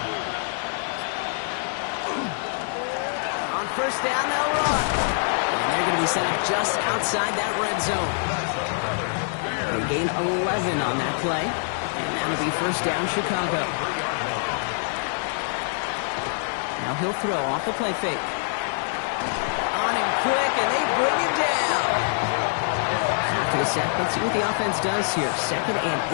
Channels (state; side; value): silent; right; digital silence